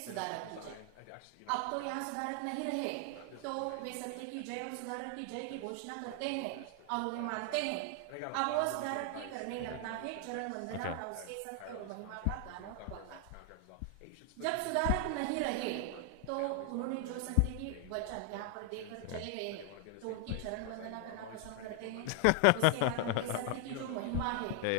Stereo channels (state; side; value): different; both; correlation 0.00